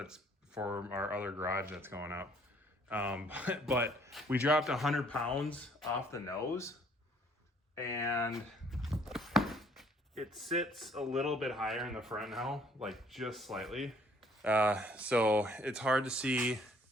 for our other garage that's going up. But we dropped 100 pounds off the nose, and it sits a little bit higher in the front now, like just slightly. So it's hard to see.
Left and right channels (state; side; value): normal; both; correlation 0.61